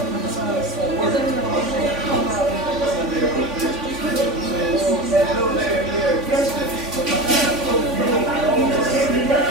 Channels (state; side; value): late; left; 3.5 ms